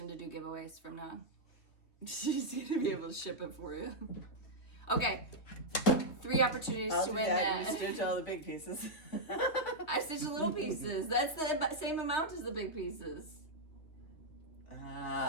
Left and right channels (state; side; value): late; right; 3.2 ms